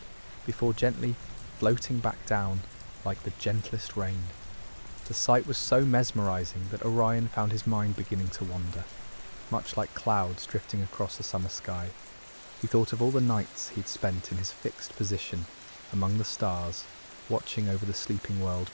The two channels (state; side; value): inverted; both; correlation -1.00